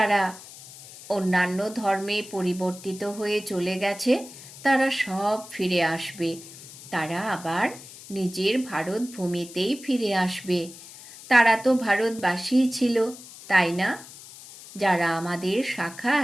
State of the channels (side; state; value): left; noise; hiss, 17 dB below the sound